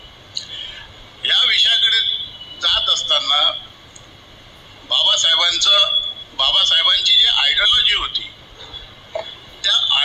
या विषयाकडे जात असताना बाबासाहेबांची जी आयडिओलॉजी होती त्या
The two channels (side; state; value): both; identical; correlation 1.00